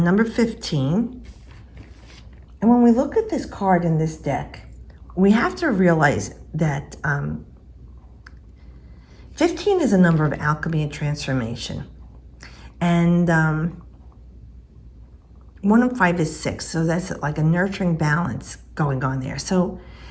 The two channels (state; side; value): identical; both; correlation 1.00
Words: 15. And when we look at this card in this deck, we have to realize that 15 is a number of alchemy and transformation. And 1 and 5 is 6. So that's like a nurturing balance going on there. So